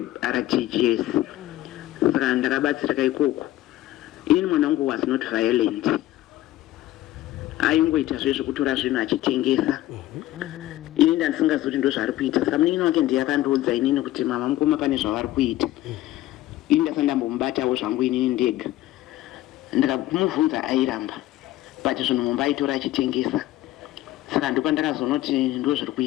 RTGS. Saka ndakabatsirika ikoko. Ini mwana wangu was not violent, aingoita zvezvekutora zvinhu achitengesa. Ini ndandisingazivi kuti ndo zvaari kuita. Saka munin'ina wake ndiye akandiudza inini kuti mama mukoma pane zvavari kuita. Ini ndasati ndambomubatawo zvangu inini ndega. Ndikamubvunza airamba, but zvinhu mumba aitora achitengesa. Saka ndipo ndakazonoti ndo zviri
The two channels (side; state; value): right; quieter; 15.2 dB